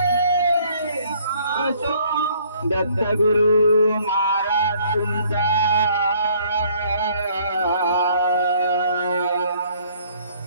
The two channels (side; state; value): both; inverted; correlation -0.61